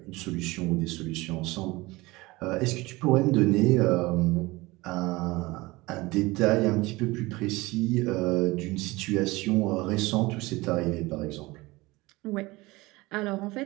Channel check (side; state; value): left; quieter; 21.6 dB